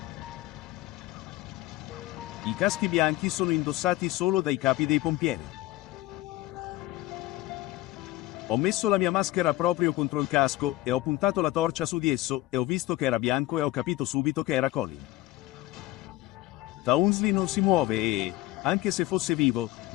I caschi bianchi sono indossati solo dai capi dei pompieri. Ho messo la mia maschera proprio contro il casco e ho puntato la torcia su di esso e ho visto che era bianco e ho capito subito che era Colin. Townsley non si muove e, anche se fosse vivo,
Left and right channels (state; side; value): quieter; right; 17.4 dB